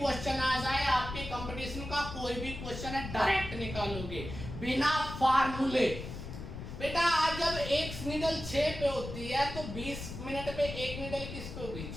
आ जाए, आपके कंपटीशन का कोई भी क्वेश्चन है, डायरेक्ट निकालोगे बिना फार्मूले। बेटा आज जब एक नीडल 6 पे होती है तो 20 मिनट पे एक नीडल किस पे होगी?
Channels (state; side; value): noise; left; rumble, 9 dB below the sound